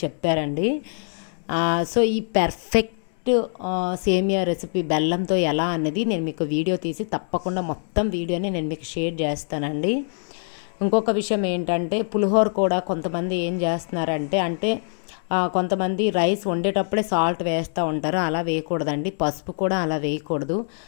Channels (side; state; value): right; silent; 63 dB below the other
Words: చెప్పారండి. సో ఈ పర్ఫెక్ట్ సేమియా రెసిపీ బెల్లంతో ఎలా అనేది నేను మీకు వీడియో తీసి తప్పకుండా మొత్తం వీడియోని నేను మీకు షేర్ చేస్తానండి. ఇంకొక విషయం ఏంటంటే పులిహోర కూడా కొంతమంది ఏం చేస్తున్నారంటే కొంతమంది రైస్ వండేటప్పుడే సాల్ట్ వేస్తూ ఉంటారు. అలా వేయకూడదండి. పసుపు కూడా అలా వేయకూడదు.